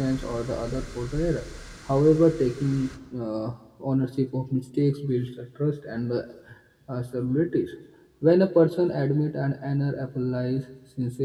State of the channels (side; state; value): both; identical; correlation 1.00